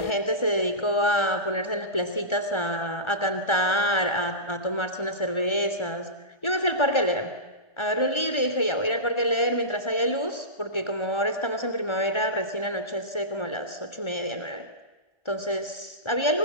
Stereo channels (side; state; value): right; late; 1.3 ms